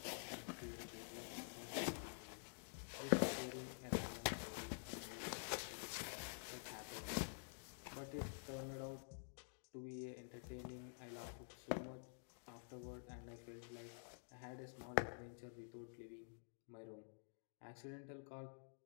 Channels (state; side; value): silent; right; digital silence